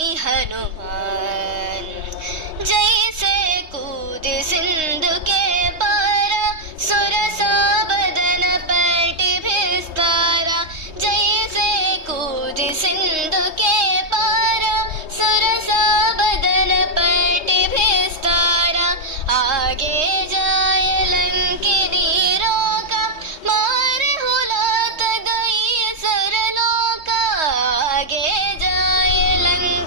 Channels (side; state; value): left; late; 3.2 ms